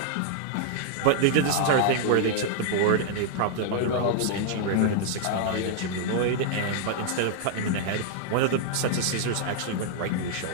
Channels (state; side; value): different; both; correlation -0.01